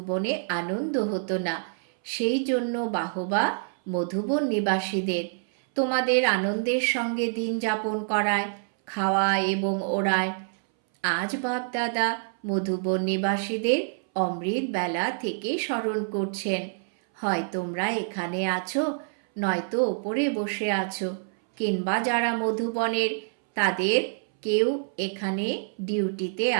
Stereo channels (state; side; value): silent; left; 60 dB below the other